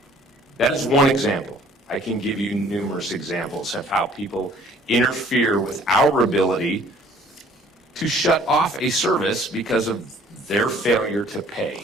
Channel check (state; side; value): normal; both; correlation 0.56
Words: That is one example. I can give you numerous examples of how people interfere with our ability to shut off a service because of their failure to